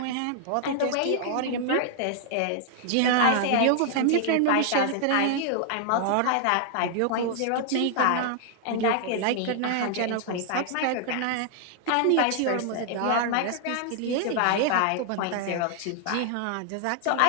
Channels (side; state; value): both; different; correlation 0.00